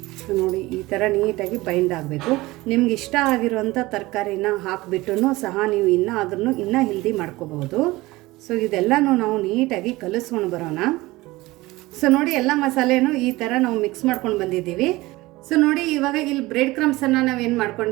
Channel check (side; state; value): left; quieter; 20.0 dB